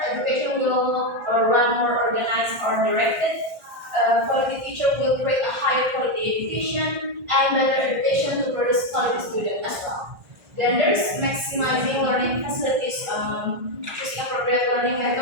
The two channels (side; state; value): left; late; 1.6 ms